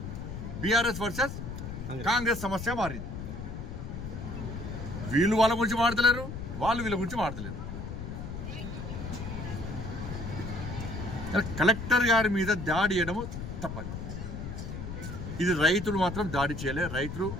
బీఆర్ఎస్ వర్సెస్ కాంగ్రెస్ సమస్య మారింది. వీళ్ళు వాళ్ళ గురించి మాడతలేరు, వాళ్ళు వీళ్ళ గురించి మాడతలేరు. కలెక్టర్ గారి మీద దాడి చేయడము తప్పదు. ఇది రైతులు మాత్రం దాడి చేయలే. రైతులు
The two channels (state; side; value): noise; left; rumble, 7 dB below the sound